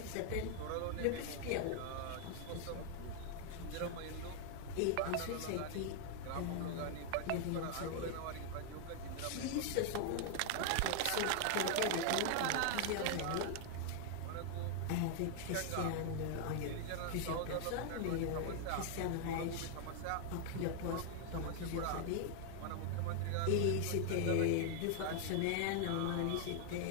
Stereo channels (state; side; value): different; both; correlation 0.00